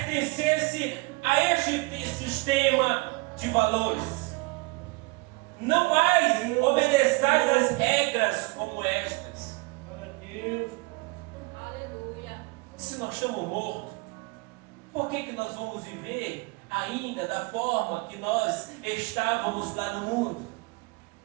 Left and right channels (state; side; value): quieter; left; 25.9 dB